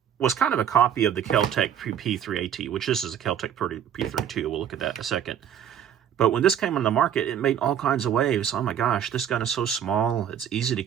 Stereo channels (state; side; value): quieter; left; 9.2 dB